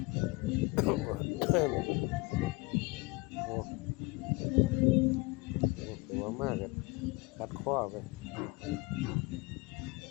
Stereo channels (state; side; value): quieter; right; 25.0 dB